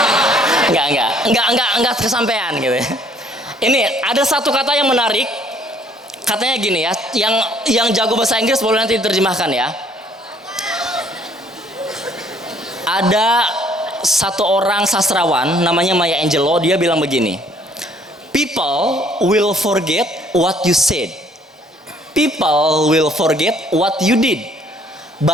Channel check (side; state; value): both; normal; correlation 0.61